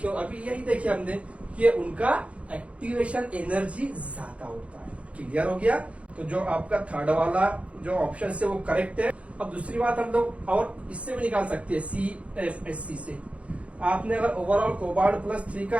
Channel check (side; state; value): left; late; 0.063 ms